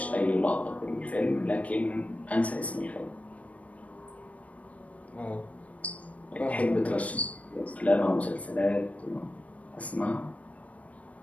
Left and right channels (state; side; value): late; right; 0.067 ms